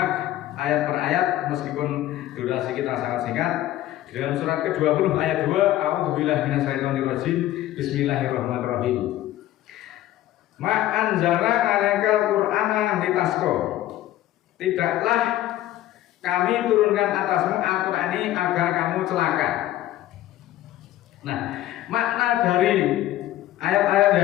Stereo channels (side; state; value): right; quieter; 14.2 dB